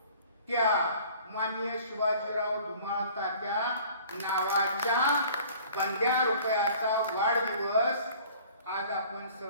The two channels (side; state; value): both; inverted; correlation -0.49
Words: त्या माननीय शिवाजीराव धुमाळ तात्या नावाच्या बंद्या रुपयाचा वाढदिवस आज आपण